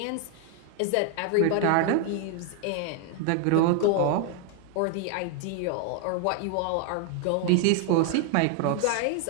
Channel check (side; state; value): both; different; correlation 0.00